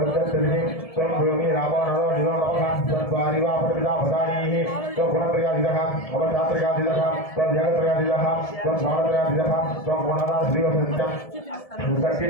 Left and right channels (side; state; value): right; late; 1.7 ms